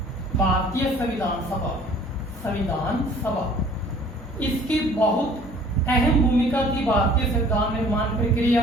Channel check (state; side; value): normal; both; correlation 0.52